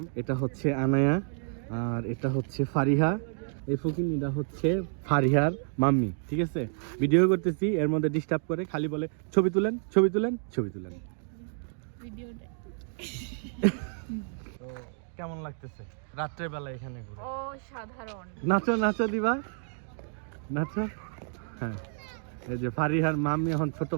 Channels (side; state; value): left; silent; 58 dB below the other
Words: এটা হচ্ছে আনায়া আর এটা হচ্ছে ফারিহা। এই ফকিনিটা হচ্ছে ফারিহার মাম্মি। ঠিক আছে, ভিডিও করতেছি, এর মধ্যে ডিস্টার্ব করে, খালি বলে ছবি তুলেন ছবি তুলেন ছবি তুলেন। তো কেমন লাগতেছে রাত্রের বেলা এখানে ঘুরে? অসাধারণ। নাচো নাচো দিবা, নাচো। হ্যাঁ, এই যে ফারিহার মাম্মি এখন ছোট